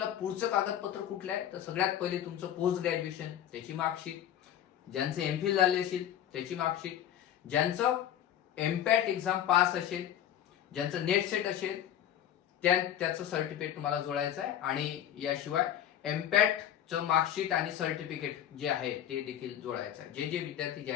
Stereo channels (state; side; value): quieter; right; 10.7 dB